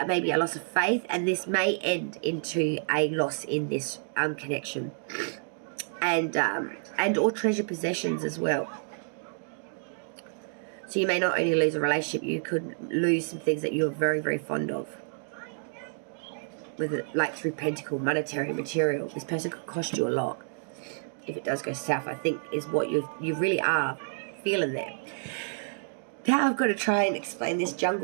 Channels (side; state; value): left; silent; digital silence